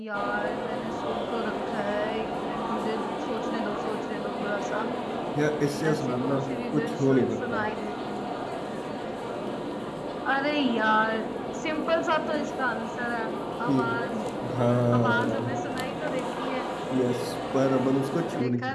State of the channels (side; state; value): both; identical; correlation 1.00